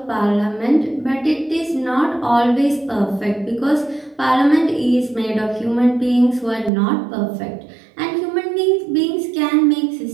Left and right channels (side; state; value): left; drops out; at 6.7 s